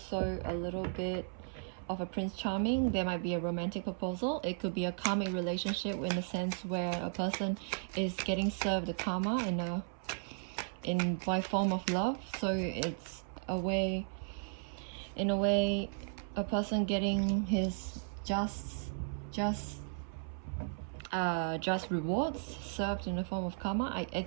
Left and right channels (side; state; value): left; silent; 54 dB below the other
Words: a little bit of a Prince Charming. There might be a romantic proposal. It could be a karmic relationship in the sense where a person is getting served the karma by form of love. So it's in a way a person getting his just rewards served in the form of karma. I